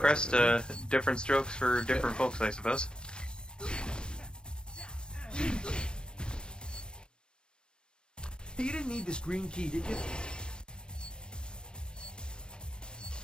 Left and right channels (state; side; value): late; right; 0.049 ms